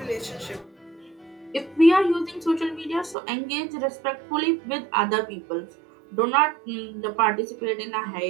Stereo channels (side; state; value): left; drops out; at 3.2 s